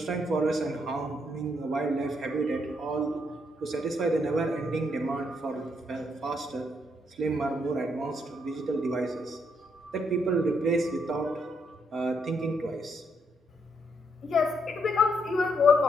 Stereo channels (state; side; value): normal; both; correlation 0.75